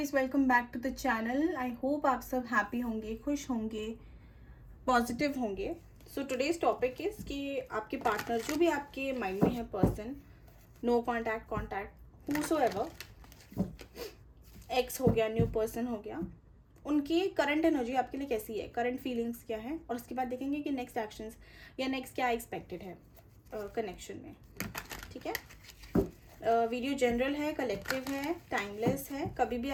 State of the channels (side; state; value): both; identical; correlation 1.00